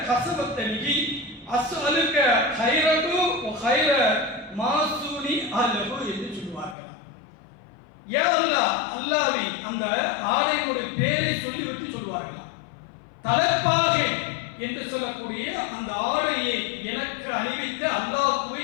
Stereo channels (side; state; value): right; drops out; at 6.8 s